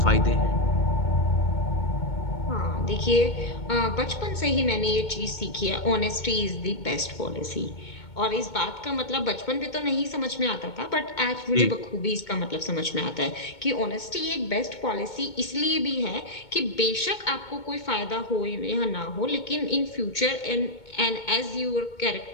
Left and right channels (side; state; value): right; late; 2.2 ms